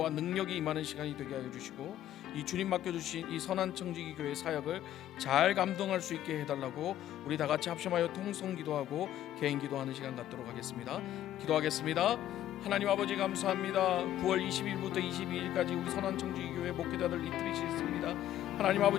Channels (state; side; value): quieter; right; 12.2 dB